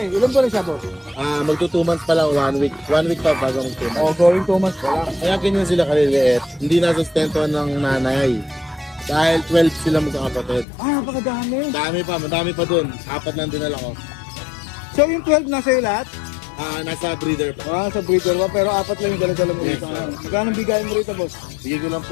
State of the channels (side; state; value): right; drops out; at 10.7 s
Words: Ilan po rin siya, boss? Magto 2 months pa lang, 1 week. 1 week pa bago mag 2 months. O, going 2 months pa lang. Kaya ganyan sila kaliliit. Hindi nasustentuhan ng nanay. Dahil 12 sila magkakapatid. Ah, napakadami. Madami pa dun. 4 lang dinala ko. So, yung 12 nasa iyo lahat? Nasa breeder pa. Ah, sa breeder pa, pero 4 lang yung dala-dala mo rito. Magkano bigayan mo rito, boss? Bigay ko lang